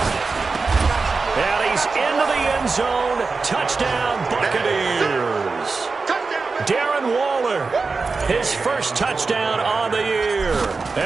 And he's into the end zone. Touchdown, Buccaneers. Darren Waller, his first touchdown on the year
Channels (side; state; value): left; quieter; 4.3 dB